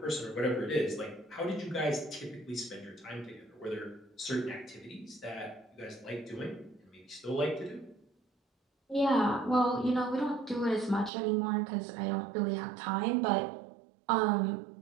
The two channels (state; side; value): drops out; left; at 11.1 s